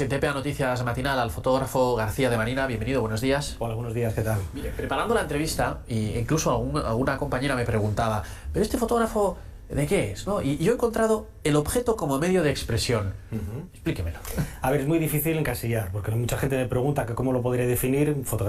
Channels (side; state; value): both; identical; correlation 1.00